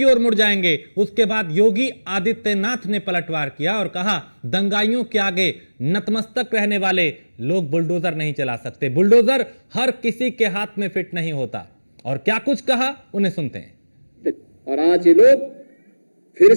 ओर मुड़ जाएंगे, उसके बाद योगी आदित्यनाथ ने पलटवार किया और कहा दंगाइयों के आगे नतमस्तक रहने वाले लोग बुलडोजर नहीं चला सकते। बुलडोजर हर किसी के हाथ में फिट नहीं होता। और क्या कुछ कहा उन्हें सुनते हैं। और आज ये लोग फिर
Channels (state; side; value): inverted; both; correlation -1.00